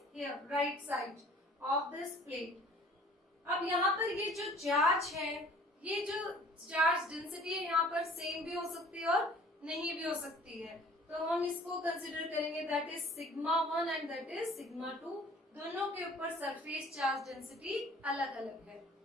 here right side of this plate। अब यहाँ पर ये जो चार्ज है, ये जो चार्ज डेंसिटी है यहाँ पर सेम भी हो सकती है और नहीं भी हो सकती है, तो हम इसको कंसिडर करेंगे that is sigma 1 and that is sigma 2। दोनों के ऊपर सरफेस चार्ज डेंसिटी अलग अलग है।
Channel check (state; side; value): normal; both; correlation 0.51